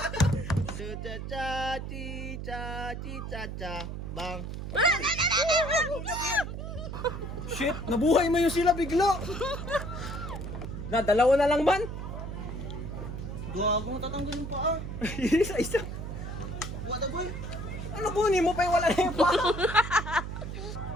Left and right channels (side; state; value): right; noise; hum, 7 dB below the sound